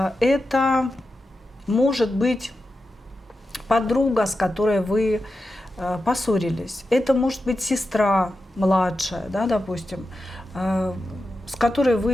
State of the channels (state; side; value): normal; both; correlation 0.90